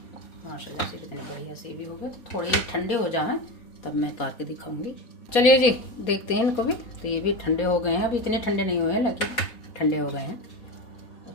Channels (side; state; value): right; late; 4.3 ms